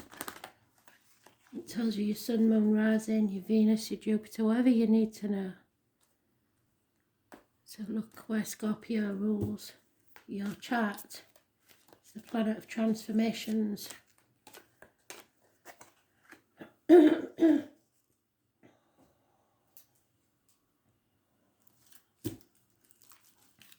It tells you your sun, moon, rising, your Venus, your Jupiter, whatever you need to know. So look where Scorpio rules your chart. It's the planet of transformations.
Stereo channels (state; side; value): identical; both; correlation 1.00